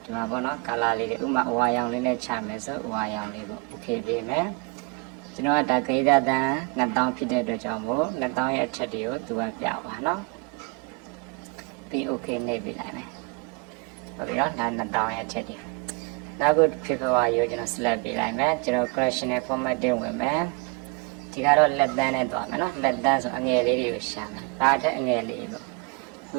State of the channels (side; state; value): left; quieter; 30.0 dB